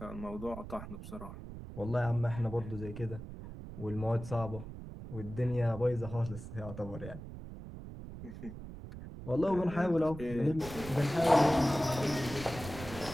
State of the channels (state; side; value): noise; right; rumble, 11 dB below the sound